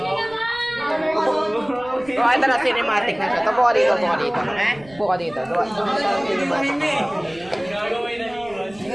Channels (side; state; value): right; noise; rumble, 23 dB below the sound